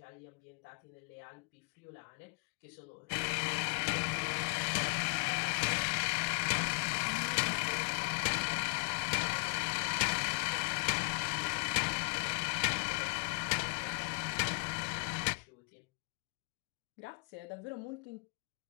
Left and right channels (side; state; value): right; quieter; 34.3 dB